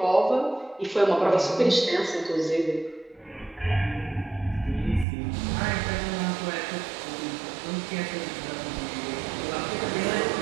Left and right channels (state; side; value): drops out; left; at 5.1 s